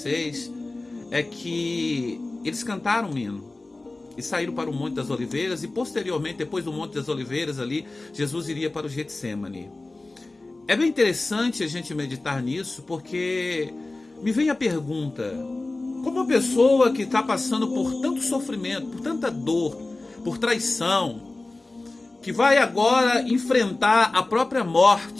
é que eles cantaram um hino. e saíram para o Monte das Oliveiras, e posteriormente, depois do Monte das Oliveiras ali, Jesus iria para o Getsemane. É bem interessante a gente meditar nisso, porque me vem a pergunta: como uma pessoa que está passando por tanto sofrimento, por tanta dor, por traição, que vai agora enfrentar a própria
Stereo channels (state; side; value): quieter; right; 3.1 dB